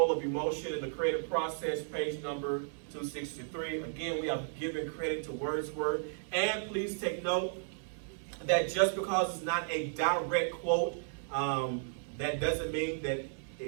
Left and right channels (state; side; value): silent; left; 55 dB below the other